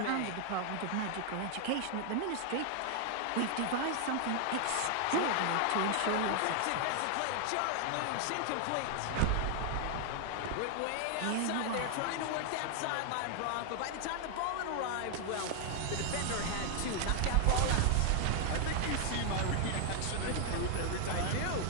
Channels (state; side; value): different; both; correlation 0.00